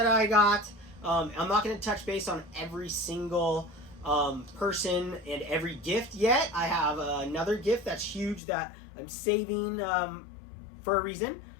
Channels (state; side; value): drops out; right; at 8.4 s